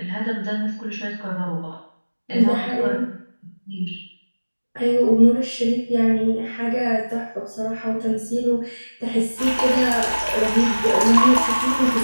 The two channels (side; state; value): both; inverted; correlation -1.00